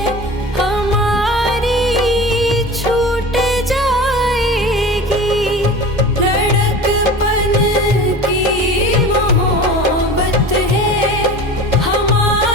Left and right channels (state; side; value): normal; both; correlation 0.35